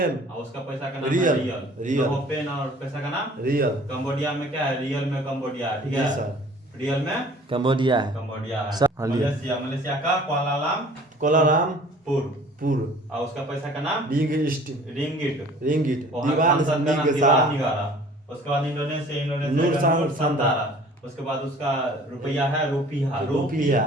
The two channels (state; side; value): normal; both; correlation 0.50